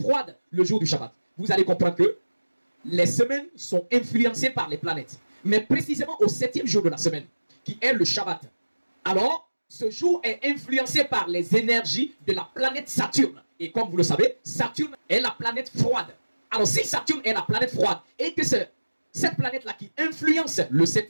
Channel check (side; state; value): both; inverted; correlation -1.00